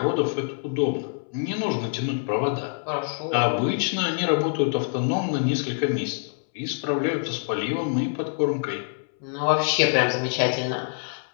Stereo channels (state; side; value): silent; right; 61 dB below the other